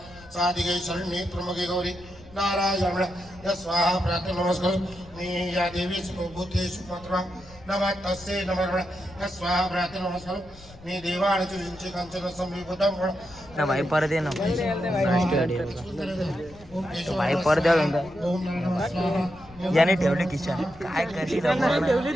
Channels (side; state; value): left; noise; rumble, 21 dB below the sound